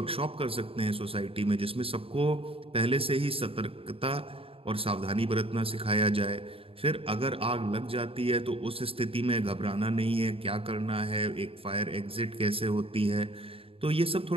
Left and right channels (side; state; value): left; late; 0.27 ms